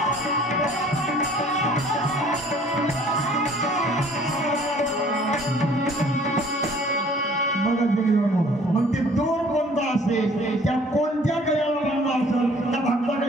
मग ते दोर कोणता असेल, त्या कोणत्या गळ्याला बांधला असेल, त्या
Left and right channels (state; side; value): normal; both; correlation 0.54